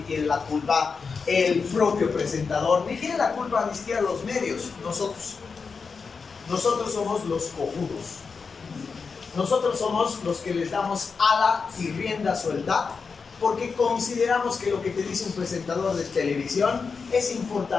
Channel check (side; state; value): right; quieter; 5.1 dB